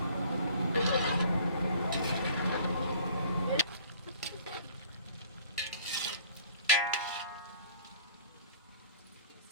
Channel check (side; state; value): both; inverted; correlation -0.53